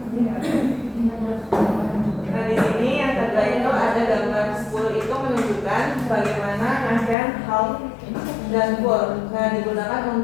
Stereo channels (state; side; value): drops out; right; at 7.2 s